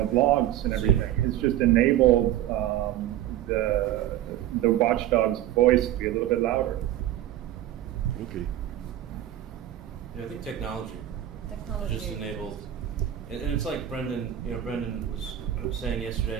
and everything, has just enabled the watchdog's voice to be a little bit louder. Okay. Yeah, I think technology just enabled, and it's like Brendan was saying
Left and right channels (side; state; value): left; quieter; 12.4 dB